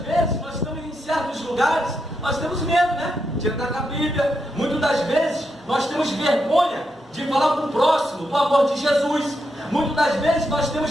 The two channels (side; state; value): both; normal; correlation 0.83